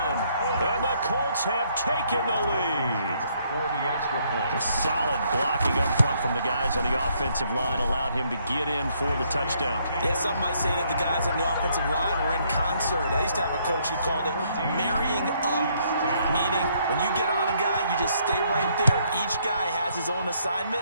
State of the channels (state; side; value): inverted; both; correlation -0.69